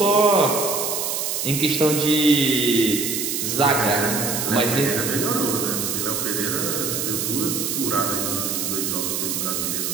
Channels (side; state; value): right; noise; hiss, 1 dB below the sound